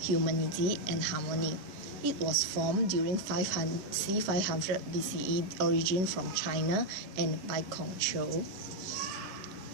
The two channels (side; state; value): left; late; 11 ms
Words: and harmony. It was formed during c. 500 BCE, origin from China and by Kongqiu.